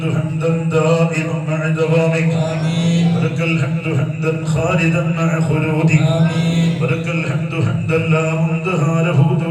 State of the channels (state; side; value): identical; both; correlation 1.00